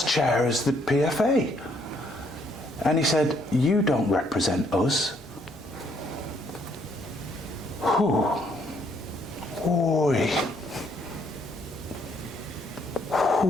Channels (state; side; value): normal; both; correlation 0.69